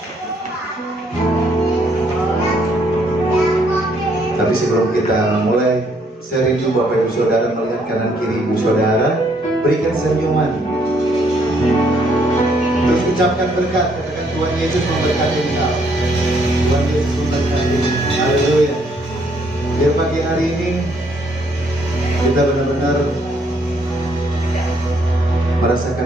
Tapi sebelum kita mulai, saya rindu Bapak Ibu Saudara melihat kanan kiri Ibu Saudara, berikan senyuman. Terus ucapkan berkat, katakan Tuhan Yesus memberkati engkau. Tuhan Yesus memberkati. Haleluya. Biar pagi hari ini kita benar-benar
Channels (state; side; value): normal; both; correlation 0.69